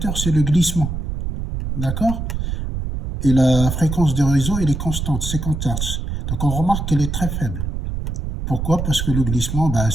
c'est le glissement. D'accord. Et la fréquence du réseau, elle est constante, 50 Hz. Donc on remarque qu'elle est très faible. Pourquoi? Parce que le glissement,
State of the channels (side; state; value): right; noise; rumble, 4 dB below the sound